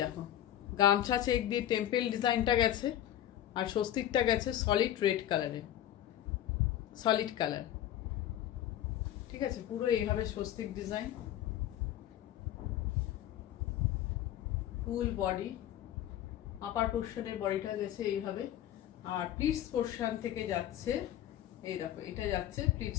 দেখো গামছা চেক দিয়ে টেম্পেল ডিজাইনটা গেছে, আর স্বস্তিকটা গেছে সলিড রেড কালারে, সলিড কালার, ঠিক আছে। পুরো এইভাবে স্বস্তিক ডিজাইন, ফুল বডি, আপার পোর্শনের বডিটা গেছে এইভাবে, আর প্লিটস পোর্শন থেকে যাচ্ছে, এই দেখো এটা যাচ্ছে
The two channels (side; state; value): right; quieter; 12.0 dB